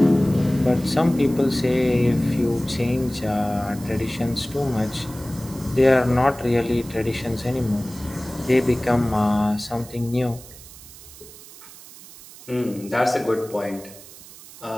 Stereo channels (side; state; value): right; noise; hiss, 18 dB below the sound